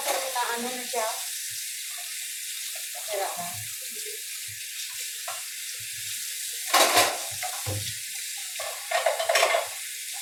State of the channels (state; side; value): identical; both; correlation 1.00